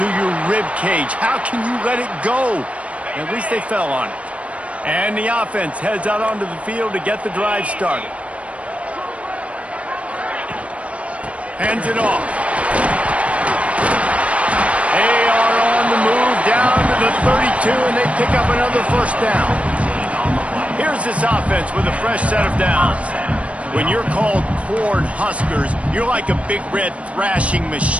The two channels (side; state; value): left; late; 0.064 ms